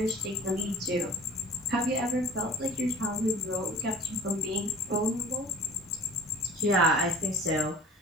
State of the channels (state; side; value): normal; both; correlation 0.45